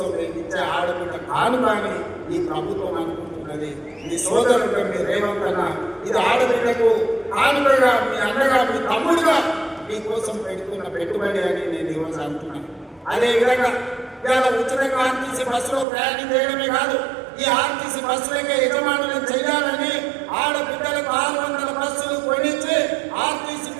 నేను ఇచ్చే ఆడబిడ్డ కాను కానీ ఈ ప్రభుత్వం అనుకుంటున్నది. మీ సోదరుడు మీ రేవంత్ అన్న ఇది ఆడబిడ్డకు కానుకగా మీ అన్నగా మీ తమ్ముడుగా మీకోసం పెట్టుకున్న పెట్టుబడి అని నేను ఈరోజు అంటున్నాను. అదేవిధంగా ఇవాళ ఉచితంగా ఆర్టీసీ బస్సులో ప్రయాణం చేయడమే కాదు, ఈ ఆర్టీసీ బస్సులకే యజమానులను చేయాలని ఆడబిడ్డలకు 600 బస్సులు కొనిచ్చి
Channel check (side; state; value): left; drops out; at 15.9 s